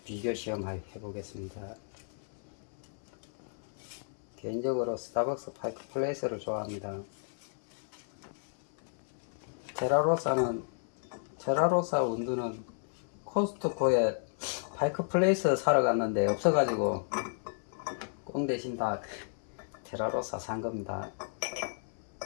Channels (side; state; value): right; silent; 56 dB below the other